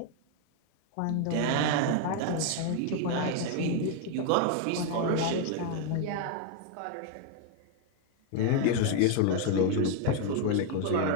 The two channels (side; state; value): both; different; correlation 0.01